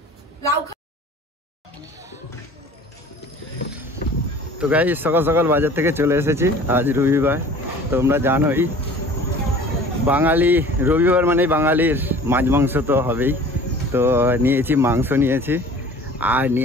লাউ। তো গাইস সকাল সকাল বাজার থেকে চলে এসেছি, আজ রবিবার। তোমরা জানোই বাঙালি রবিবার মানে বাঙালির মাছ মাংস তো হবেই। তো নিয়েছি মাংস, নিয়েছি আর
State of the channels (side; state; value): both; normal; correlation 0.46